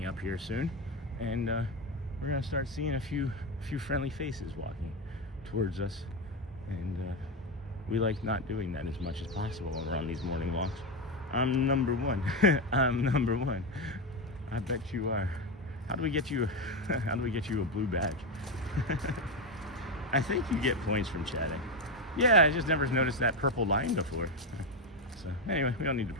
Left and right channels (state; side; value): normal; both; correlation 0.11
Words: up here soon, and we're going to start seeing a few friendly faces walking towards us, and we like not doing that as much as possible when we're on these morning walks. I'm #1. I'm #1. I bet you are. How do we get you a blue badge? I think you get points from chatting. Yeah, I just never noticed that purple line before. So anyway, we don't need to